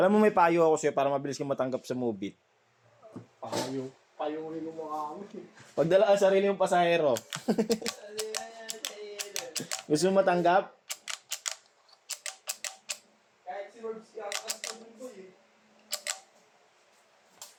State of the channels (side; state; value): both; identical; correlation 1.00